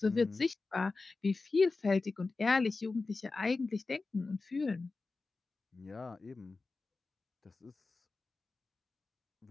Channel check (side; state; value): right; quieter; 3.8 dB